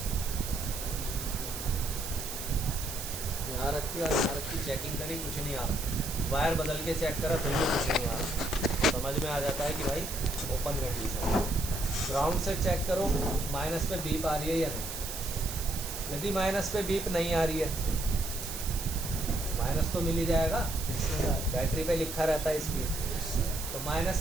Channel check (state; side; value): noise; right; hiss, 7 dB below the sound